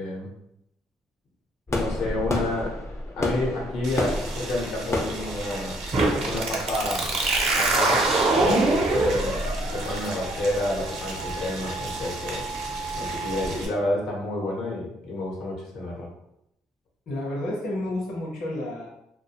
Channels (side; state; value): both; normal; correlation 0.66